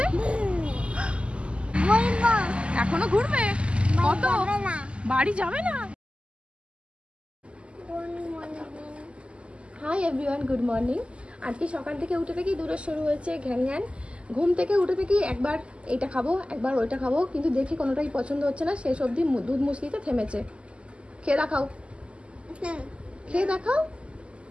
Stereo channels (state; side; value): late; left; 0.054 ms